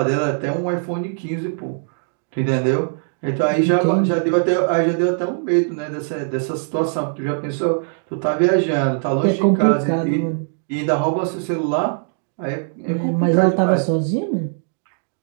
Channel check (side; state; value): left; silent; digital silence